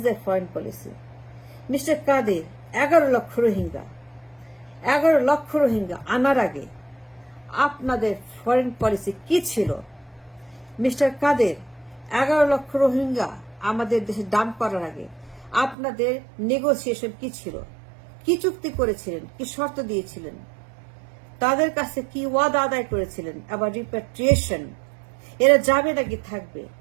foreign policy. Mr. Kadir, 11 লক্ষ রোহিঙ্গা আনার আগে আপনাদের ফরেন পলিসি কি ছিল? মিস্টার কাদের, 11 লক্ষ রোহিঙ্গা আমাদের দেশে dump করার আগে আপনাদের নেগোসিয়েশন কি ছিল? কি চুক্তি করেছিলেন? কি শর্ত দিয়েছিলেন? তাদের কাছে কি ওয়াদা আদায় করেছিলেন? আবার রিপ্যাট্রিয়েশন, এরা যাবে নাকি থাকবে?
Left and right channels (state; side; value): drops out; left; at 15.8 s